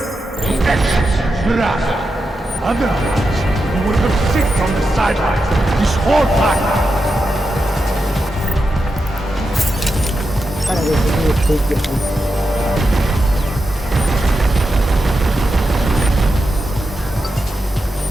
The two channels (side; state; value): both; normal; correlation 0.88